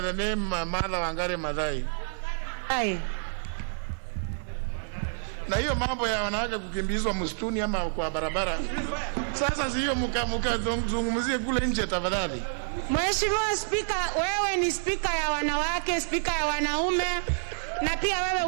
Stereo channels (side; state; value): left; silent; 59 dB below the other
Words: the name Mother Wangari Maathai. Na hiyo mambo ya wanawake kukimbizwa msituni ama kwa barabara, sasa hiyo mkazungumzie kule nje tafadhali. Mheshimiwa Speaker, wewe ni speaker ya wanawake, speaker ya wanaume, na pia wewe